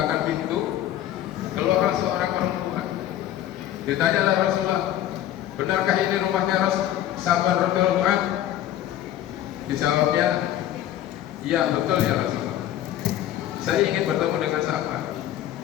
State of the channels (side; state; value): right; quieter; 12.3 dB